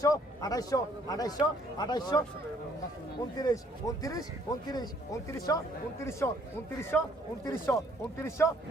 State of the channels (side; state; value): both; normal; correlation 0.63